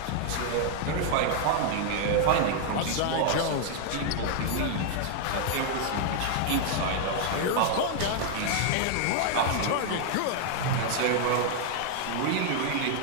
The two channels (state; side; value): different; both; correlation 0.00